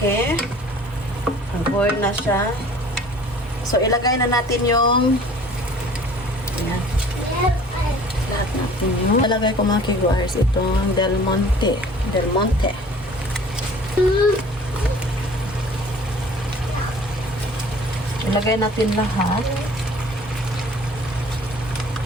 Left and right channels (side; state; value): both; normal; correlation 0.49